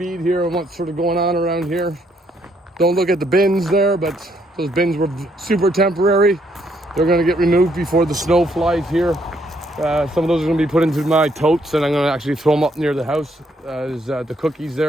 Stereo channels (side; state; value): both; normal; correlation 0.71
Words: here on what's sort of going on around here. Don't look at the bins there, but those bins were super temporary. They're going to get removed before the snow flies here. Some of those are going to be put into my totes, and I'm going to actually throw them up near the house as the cookies